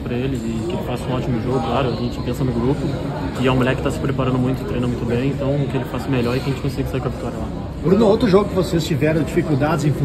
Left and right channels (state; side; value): identical; both; correlation 1.00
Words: para ele e que ele faça um ótimo jogo, claro. A gente pensa no grupo, que é um moleque que está se preparando muito, treina muito bem, então que ele faça melhor e que a gente consiga sair com a vitória lá. Bruno, outro jogo que vocês tiveram dificuldades em